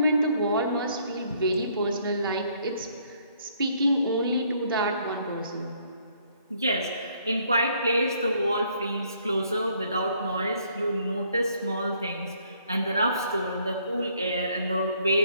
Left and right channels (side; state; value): both; inverted; correlation -0.66